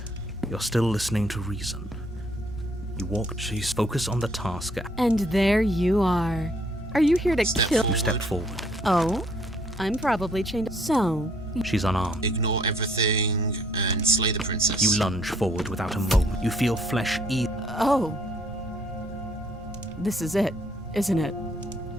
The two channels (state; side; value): normal; both; correlation 0.64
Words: You're still listening to reason. You walk... She's focused on the task. And there you are. Are you here to Step kill? You step forward. Oh, I'm probably chained. So, She's unarmed. Ignore everything and slay the princess. You lunge forward without a moment. You feel flesh eat. oh. This is it, isn't it?